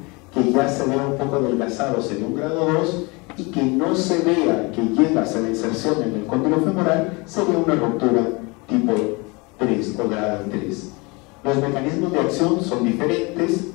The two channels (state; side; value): quieter; right; 27.3 dB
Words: que ya se vea un poco adelgazado sería un grado 2, y que no se vea que llega a la inserción en el cóndilo femoral sería una ruptura tipo 3 o grado 3. Los mecanismos de acción son diferentes